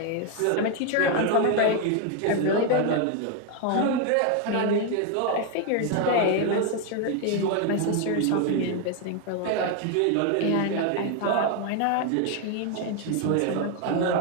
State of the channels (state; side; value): different; both; correlation 0.01